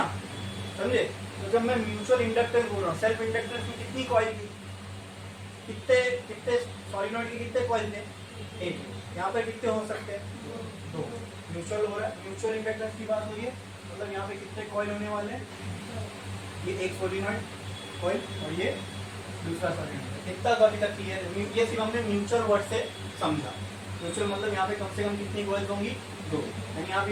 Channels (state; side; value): identical; both; correlation 1.00